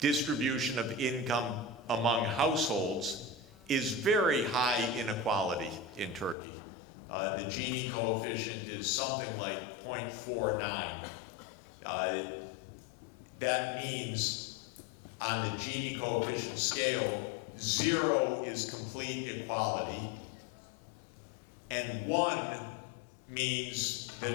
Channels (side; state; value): right; drops out; at 6.4 s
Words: of income among households, is very high inequality in Turkey. The Gini coefficient is something like 0.49. That means on the Gini coefficient scale, 0 is complete equality, and 1 means